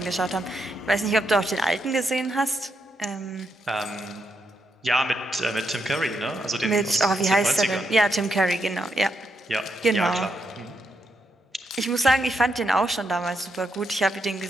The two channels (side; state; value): both; normal; correlation 0.81